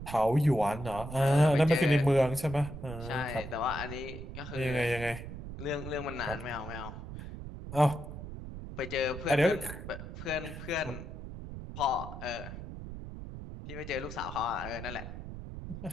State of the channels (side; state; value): right; noise; rumble, 10 dB below the sound